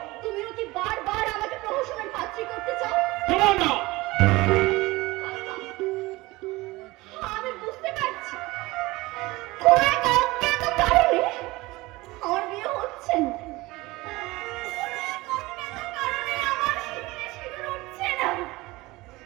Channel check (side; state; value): left; quieter; 20.9 dB